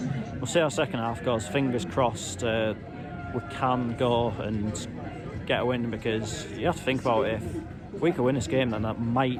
we'll see how second half goes. Fingers crossed we can go and get a win, because you have to think about it, if we could win this game, then that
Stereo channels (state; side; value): identical; both; correlation 1.00